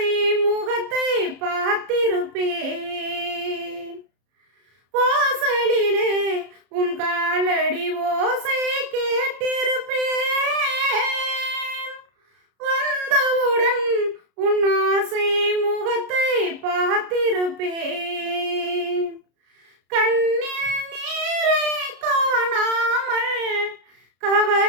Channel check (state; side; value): late; left; 33 ms